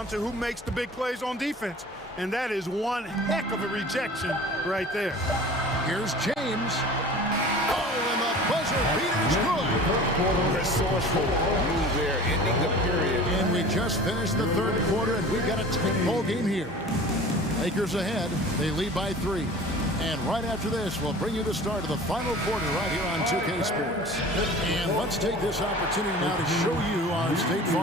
to who makes the big plays on defense. And that is one heck of a rejection right there. Here's James. Oh, and the buzzer beater's good. Resourceful move there, ending the period. And we just finished the third quarter, and we've got a tight ball game here. Lakers ahead. They lead by 3. And right after this, we'll bring you the start of the final quarter right here on 2K Sports. And let's take this opportunity now to show you our State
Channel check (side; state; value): both; normal; correlation 0.41